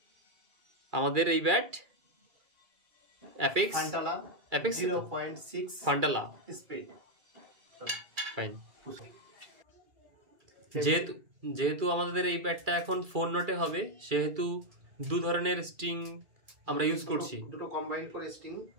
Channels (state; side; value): late; left; 2.3 ms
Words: আমাদের এই ব্যাট অ্যাপেক্স ফান্টালা 0.6 ফান্টালা স্পিড। ফাইন। যেহেতু আমাদের এই ব্যাটটা এখন 4 নটে হবে, সেহেতু দু ধরনের স্ট্রিং আমরা ইউজ করছি, দুটো কম্বাইন করে স্ট্রিং।